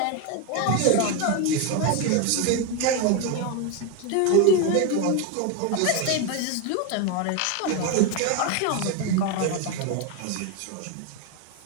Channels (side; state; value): both; different; correlation 0.02